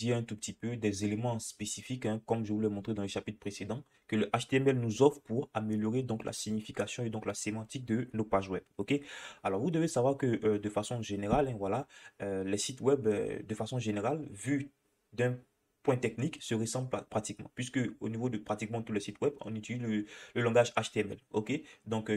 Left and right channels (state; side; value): identical; both; correlation 1.00